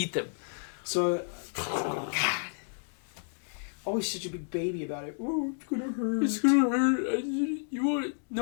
them. So, God, always such a big baby about it. Oh, it's gonna hurt. It's gonna hurt. You want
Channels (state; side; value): silent; right; digital silence